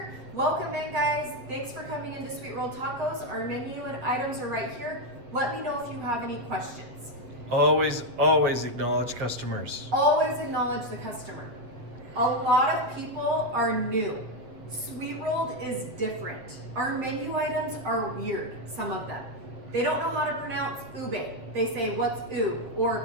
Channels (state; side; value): late; left; 8.2 ms